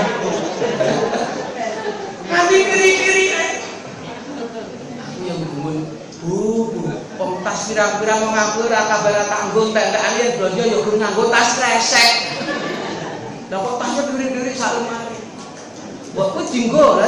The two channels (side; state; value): both; identical; correlation 1.00